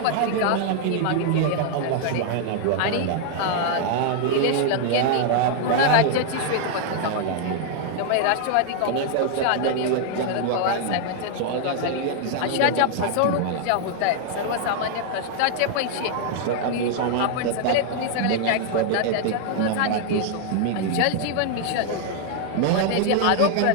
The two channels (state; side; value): different; both; correlation 0.00